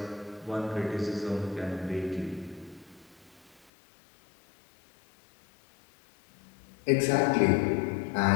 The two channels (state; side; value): drops out; right; at 3.6 s